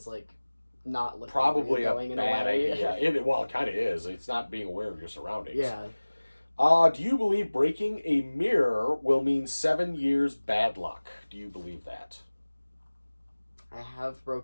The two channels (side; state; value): both; inverted; correlation -1.00